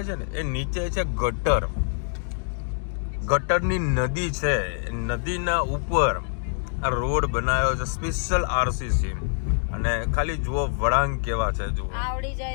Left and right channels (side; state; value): right; silent; digital silence